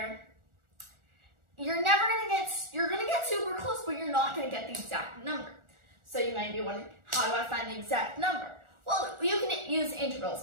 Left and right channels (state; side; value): late; left; 1.4 ms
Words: you're gonna get super close, but you're not gonna get the exact number. So you might be wondering, how do I find the exact number? Well, you can use